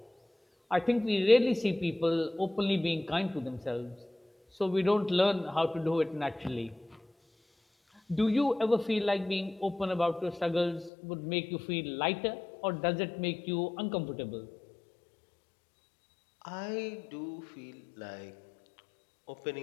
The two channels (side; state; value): right; drops out; at 10.9 s